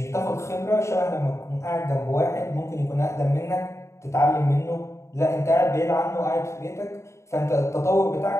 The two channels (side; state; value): right; late; 0.14 ms